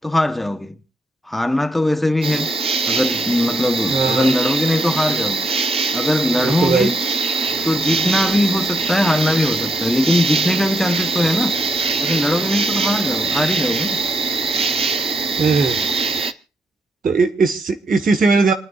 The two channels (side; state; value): both; normal; correlation 0.77